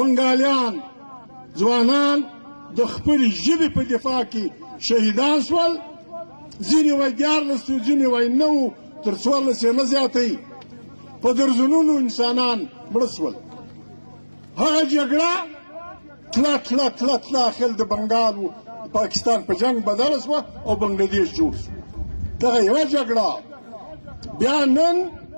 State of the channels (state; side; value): inverted; both; correlation -1.00